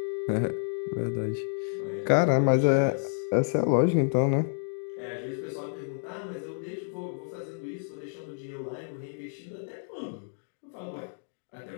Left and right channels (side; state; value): right; silent; digital silence